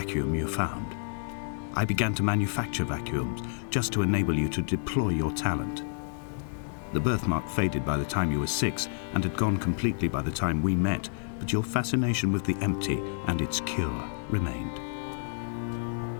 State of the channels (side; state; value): right; silent; digital silence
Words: you found. I began to manufacture vacuums just to enable you to deploy your talent. The birthmark faded by the time you were 6 and had gone completely by the time we met, but your fascination with the empty and its cure remained.